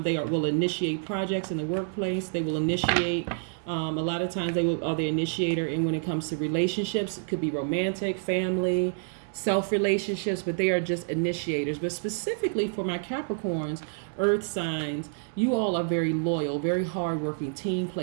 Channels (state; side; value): silent; left; digital silence